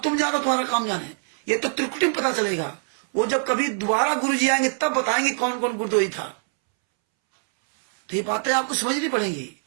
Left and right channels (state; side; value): silent; left; 63 dB below the other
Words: तुम जानो तुम्हारा काम जाने। ये तो त्रिकुटी में पता चलेगा। वो जब कभी दोबारा गुरु जी आएंगे तब बताएंगे कौन कौन गुरदोही था। तो ये बातें आपको समझनी पड़ेंगी